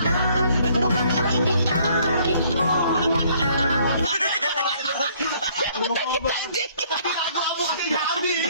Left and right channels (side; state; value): both; inverted; correlation -0.62